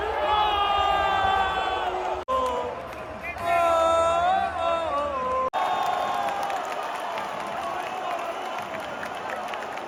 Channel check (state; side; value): identical; both; correlation 1.00